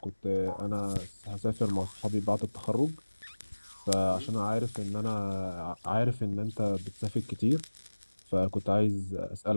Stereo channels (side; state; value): both; inverted; correlation -1.00